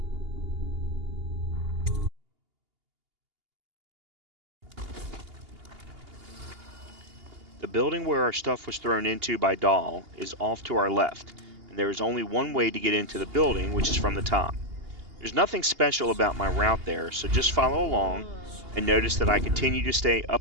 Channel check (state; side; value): late; left; 2.8 ms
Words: The building where our stuff was thrown into by Dahl is off to our left, and there is only one way to get into the building, which is from the top. There's nothing special about my route there, so just follow along and notice that I continue to stay